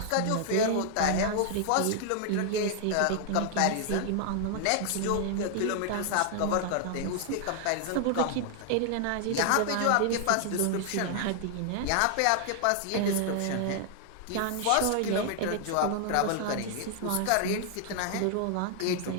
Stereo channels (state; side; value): different; both; correlation 0.00